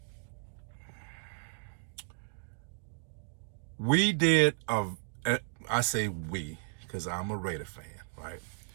We did I say we, because I'm a Raider fan, right?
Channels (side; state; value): left; silent; digital silence